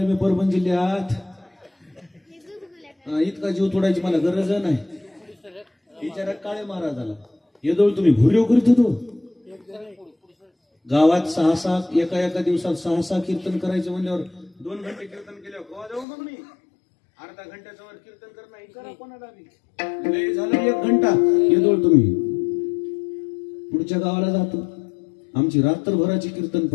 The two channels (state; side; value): drops out; right; at 16.1 s